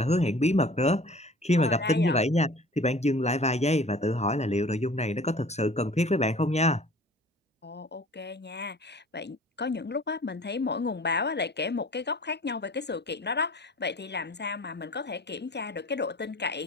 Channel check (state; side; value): normal; both; correlation 0.47